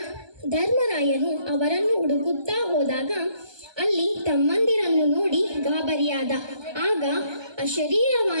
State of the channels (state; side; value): late; left; 1.2 ms